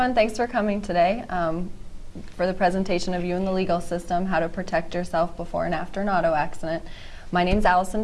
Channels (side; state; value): both; identical; correlation 1.00